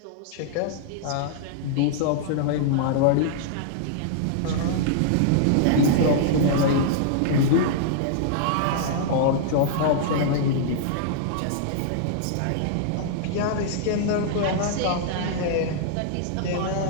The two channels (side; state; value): both; different; correlation -0.01